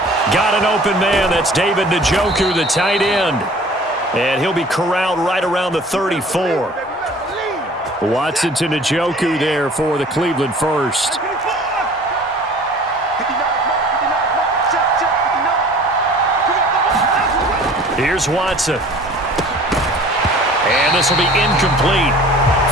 Got an open man. That's David Njoku, the tight end. And he'll be corralled right around the 34. Watson to Njoku there for the Cleveland first. Here's Watson. And this will be incomplete.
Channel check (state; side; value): normal; both; correlation 0.48